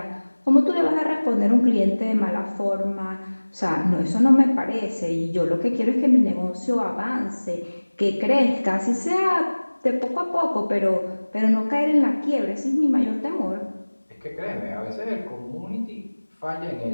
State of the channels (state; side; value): inverted; both; correlation -1.00